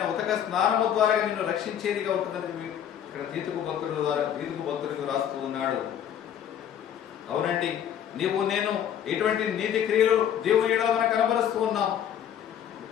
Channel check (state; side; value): quieter; right; 9.5 dB